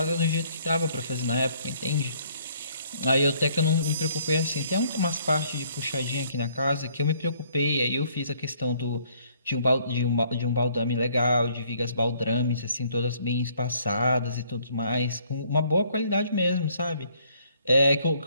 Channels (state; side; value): inverted; both; correlation -0.64